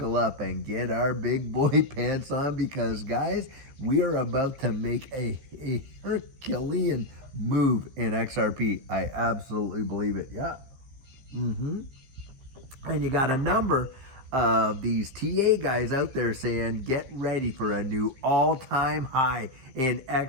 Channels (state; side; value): late; left; 15 ms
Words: up and get our big boy pants on because, guys, we are about to make a Herculean move in XRP. I absolutely believe it. Yeah. And you got a number of these TA guys out there saying, get ready for a new all-time high in